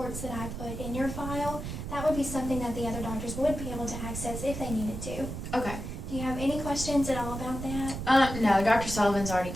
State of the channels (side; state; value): right; noise; rumble, 7 dB below the sound